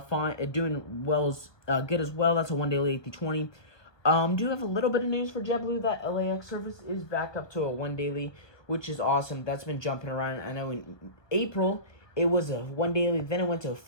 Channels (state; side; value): late; right; 1.4 ms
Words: doing well, good as well. That's a 1 daily A320. Do have a little bit of news for JetBlue that LAX service is back up to a 1 daily, which is awesome. That's been jumping around. I know in April it was a 1 daily, then it went to a